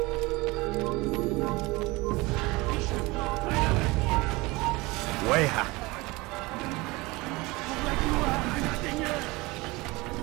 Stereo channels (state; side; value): quieter; left; 22.9 dB